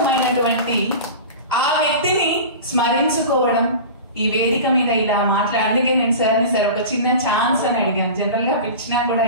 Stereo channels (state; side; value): inverted; both; correlation -0.33